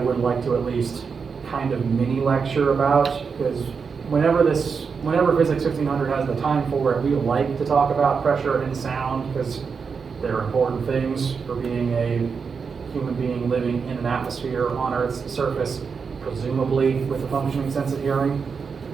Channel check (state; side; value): quieter; left; 5.6 dB